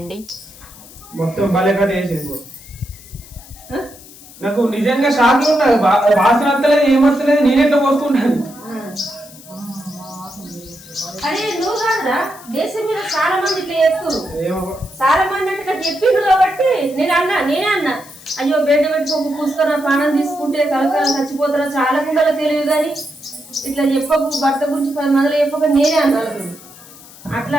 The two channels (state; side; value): noise; left; hiss, 20 dB below the sound